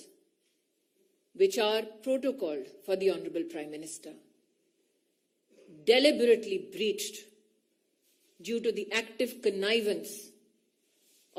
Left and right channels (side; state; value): both; identical; correlation 1.00